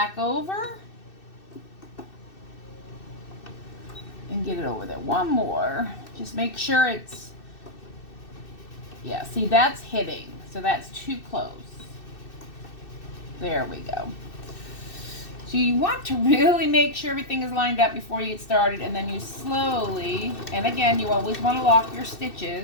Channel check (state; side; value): late; right; 2.6 ms